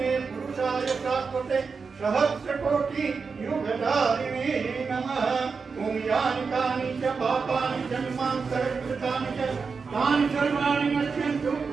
पुरुषाय शाश्वते सहस्रकोटि युगधारिणे नमः। ओम यानि कानि च पापानि जन्मां सर्वकृतानि च तानि सर्वाणि नश्यन्तु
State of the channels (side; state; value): left; quieter; 5.1 dB